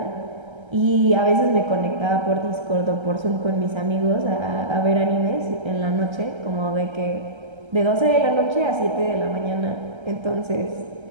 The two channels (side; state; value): left; late; 1.3 ms